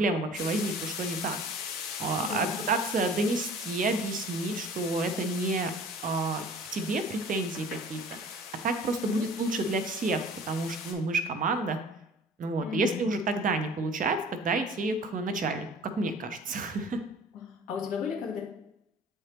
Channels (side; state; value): both; normal; correlation 0.46